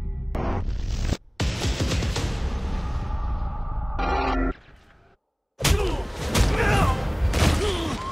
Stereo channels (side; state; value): both; identical; correlation 1.00